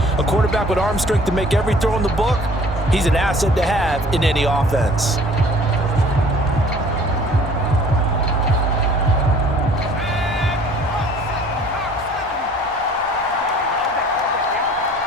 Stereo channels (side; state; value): both; normal; correlation 0.52